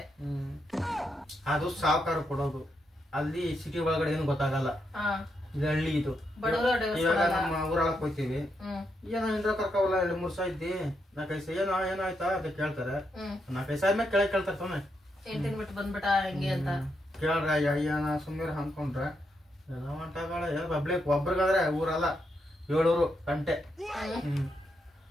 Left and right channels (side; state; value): both; normal; correlation 0.81